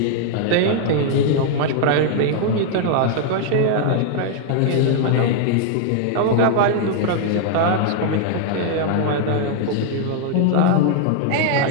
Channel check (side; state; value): both; different; correlation 0.00